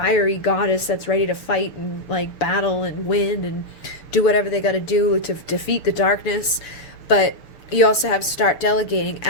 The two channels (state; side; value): late; right; 6.9 ms